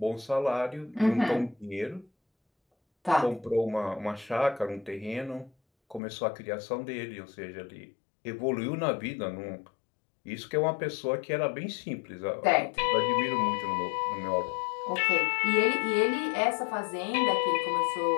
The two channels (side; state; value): right; drops out; at 6.0 s